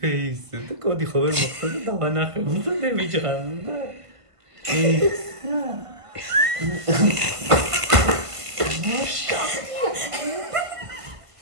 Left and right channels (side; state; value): left; late; 1.5 ms